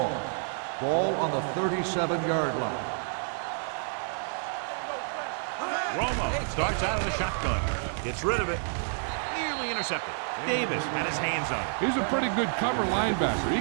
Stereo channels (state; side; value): silent; left; 58 dB below the other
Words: Ball on the 37-yard line. Romo starts out of the shotgun. Gets rid of it. Nearly intercepted. Davis had his hands on it. He's a pretty good cover linebacker. He